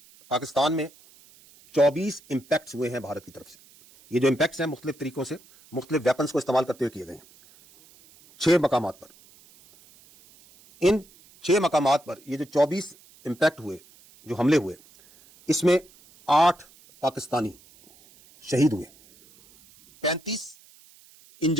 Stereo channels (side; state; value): right; noise; hiss, 26 dB below the sound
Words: پاکستان میں 24 امپیکٹس ہوئے ہیں بھارت کی طرف سے۔ یہ جو امپیکٹس ہیں مختلف طریقوں سے مختلف ویپنز کو استعمال کرتے ہوئے کیے گئے ہیں 6 مقامات پر۔ ان 6 مقامات پر یہ جو 24 امپیکٹ ہوئے، جو حملے ہوئے، اس میں 8 پاکستانی شہید ہوئے، 35